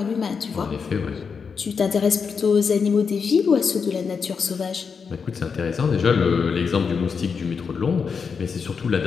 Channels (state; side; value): quieter; right; 5.8 dB